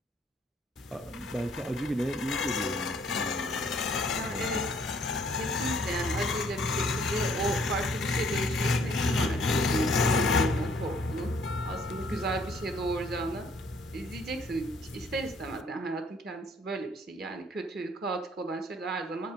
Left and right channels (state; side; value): normal; both; correlation 0.62